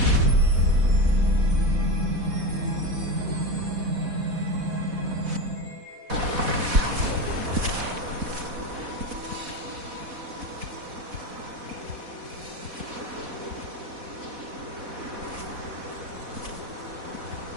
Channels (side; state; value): left; late; 4.1 ms